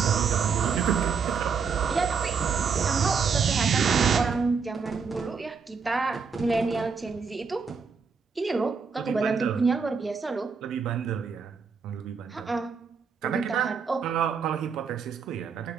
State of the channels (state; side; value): quieter; left; 5.7 dB